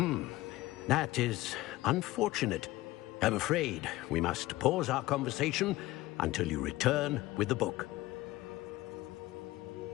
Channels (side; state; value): right; quieter; 18.1 dB